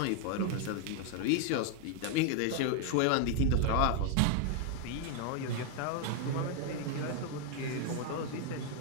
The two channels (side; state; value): both; different; correlation 0.00